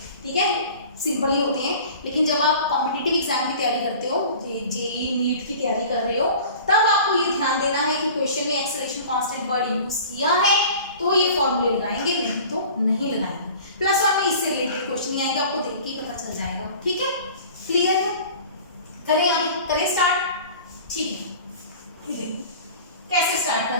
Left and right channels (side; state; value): both; inverted; correlation -0.42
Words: ठीक है, सिंपल ही होते हैं, लेकिन जब आप कॉम्पिटिटिव एग्जाम की तैयारी करते हो, जेईई नीट की तैयारी कर रहे हो, तब आपको ये ध्यान देना है कि क्वेश्चन में एक्सेलरेशन कांस्टेंट वर्ड यूज किया है तो ये फॉर्मूले लगाएंगे, नहीं तो नहीं लगाएंगे। +1 में इससे रिलेटेड क्वेश्चन नहीं आएगा, आपको देख के ही पता चल जाएगा। ठीक है, क्लियर है? करें आगे, करें स्टार्ट। ठीक है, देखो कैसे स्टार्ट